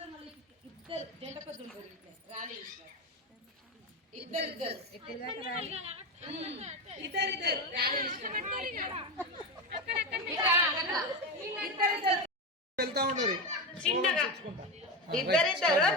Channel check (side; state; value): both; normal; correlation 0.16